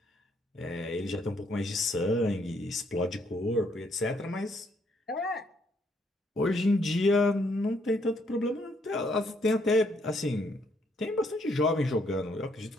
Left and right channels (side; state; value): both; normal; correlation 0.71